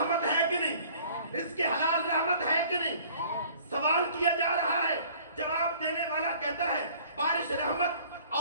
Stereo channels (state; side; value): inverted; both; correlation -0.53